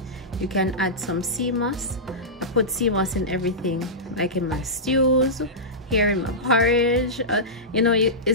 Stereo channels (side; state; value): both; normal; correlation -0.15